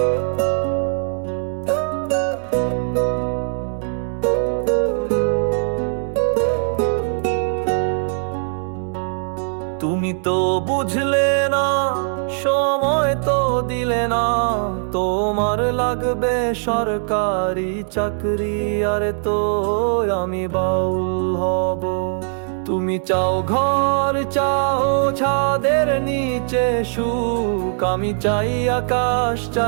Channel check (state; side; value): silent; left; 65 dB below the other